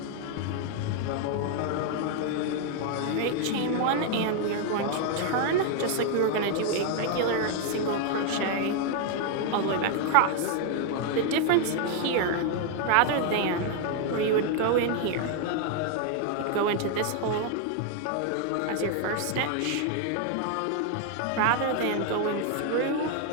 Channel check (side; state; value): both; different; correlation 0.00